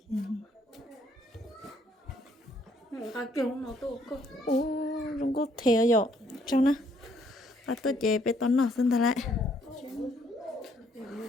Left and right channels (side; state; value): both; normal; correlation 0.67